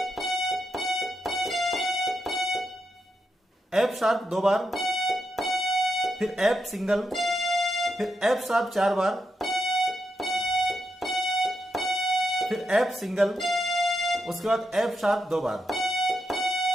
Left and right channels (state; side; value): normal; both; correlation 0.84